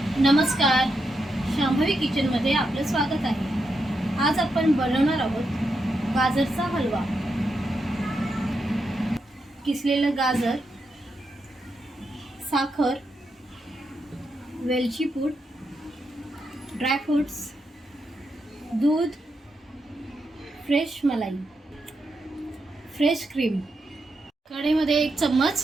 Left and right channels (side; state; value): both; normal; correlation 0.84